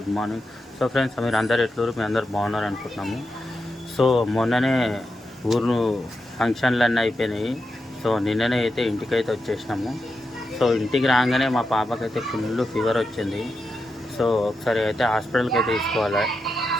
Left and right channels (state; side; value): normal; both; correlation 0.87